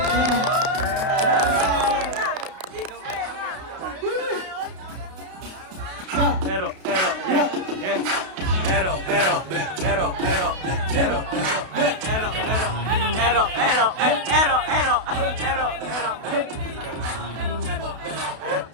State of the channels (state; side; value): late; left; 32 ms